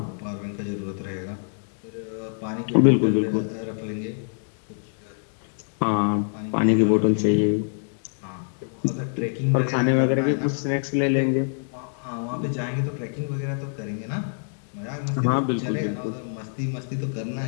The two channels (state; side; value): silent; right; digital silence